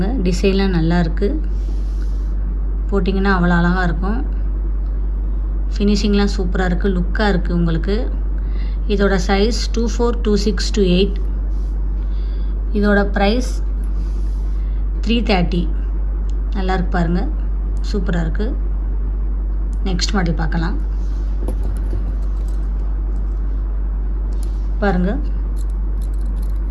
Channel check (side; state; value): both; identical; correlation 1.00